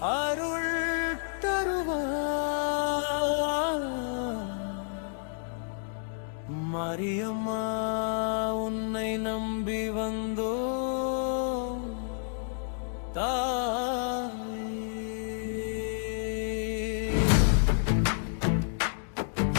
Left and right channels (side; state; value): right; silent; digital silence